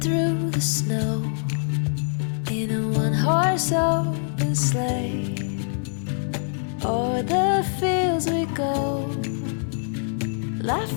the snow in a one-horse open sleigh. O'er the fields we go,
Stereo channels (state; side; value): silent; right; digital silence